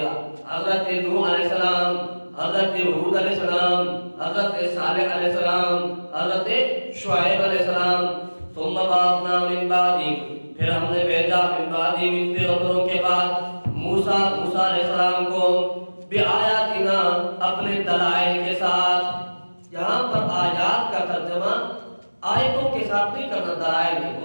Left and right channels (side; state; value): both; inverted; correlation -1.00